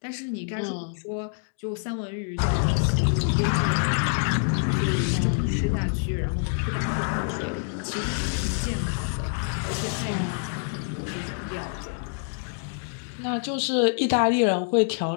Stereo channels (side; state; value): right; silent; 61 dB below the other